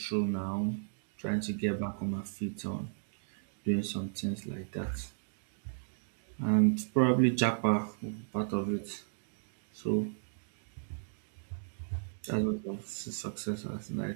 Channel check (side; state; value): left; silent; digital silence